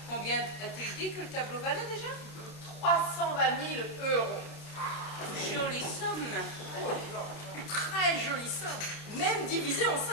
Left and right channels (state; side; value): late; right; 29 ms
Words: combien a-t-il dit que le tableau valait déjà? 320 000 euros. Jolie somme. Très jolie somme. Même divisé en